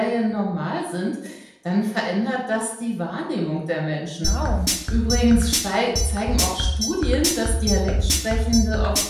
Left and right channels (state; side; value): identical; both; correlation 1.00